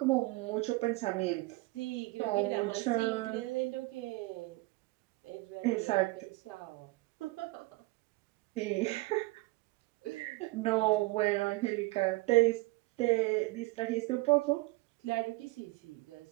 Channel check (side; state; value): left; quieter; 22.5 dB